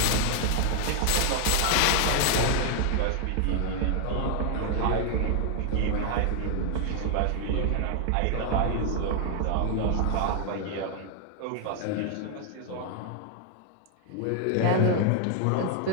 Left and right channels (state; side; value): different; both; correlation 0.00